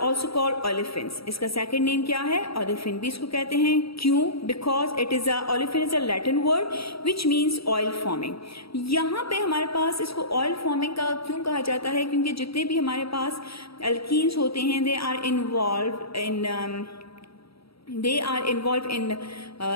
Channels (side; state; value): right; late; 0.76 ms